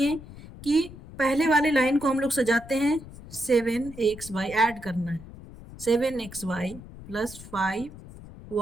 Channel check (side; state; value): left; noise; rumble, 16 dB below the sound